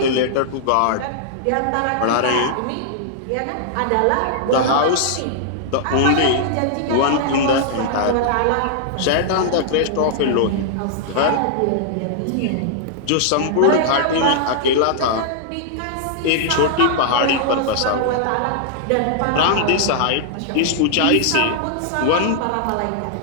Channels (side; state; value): both; different; correlation -0.01